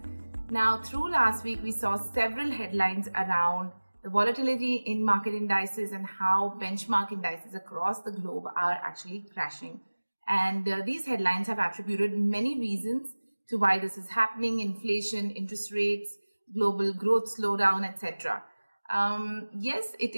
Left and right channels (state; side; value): inverted; both; correlation -1.00